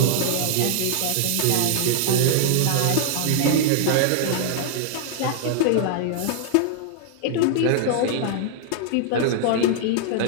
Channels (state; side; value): different; both; correlation 0.00